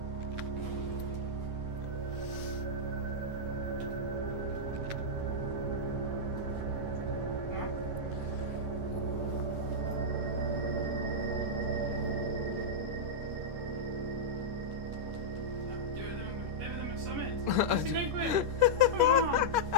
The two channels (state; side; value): late; left; 10 ms